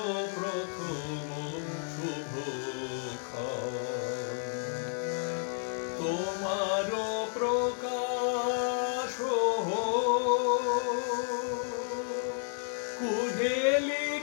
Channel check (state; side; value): silent; right; 57 dB below the other